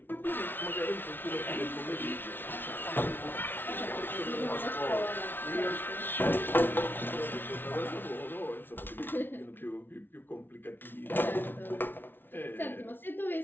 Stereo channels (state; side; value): late; right; 0.099 ms